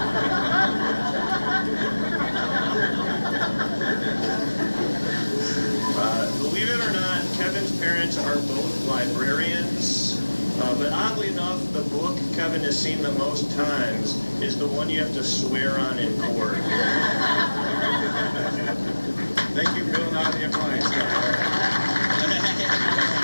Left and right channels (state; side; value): inverted; both; correlation -1.00